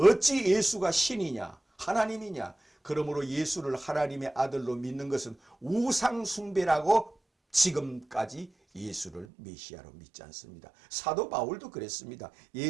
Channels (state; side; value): drops out; left; at 9.2 s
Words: 예수가 신이냐 하나님이냐. 그러므로 예수를 하나님의 아들로 믿는 것은 우상숭배라고 지금까지 예수를 메시아로 믿지 않습니다. 사도 바울도 그랬습니다.